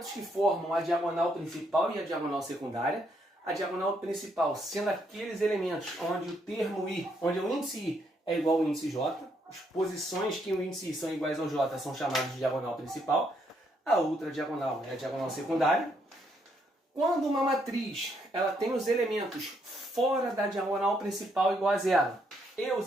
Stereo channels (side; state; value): both; normal; correlation 0.74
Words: que formam a diagonal principal e a diagonal secundária. A diagonal principal sendo aqueles elementos onde o termo I, onde o índice I é igual ao índice J. As posições que o índice I são iguais ao J são chamadas de diagonal principal. A outra diagonal é a diagonal secundária. Quando uma matriz ela tem os elementos fora da diagonal principal igual a 0 e os